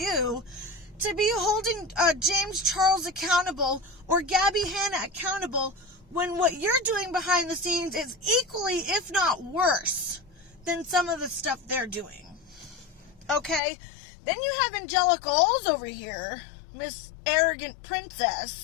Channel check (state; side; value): drops out; right; at 13.6 s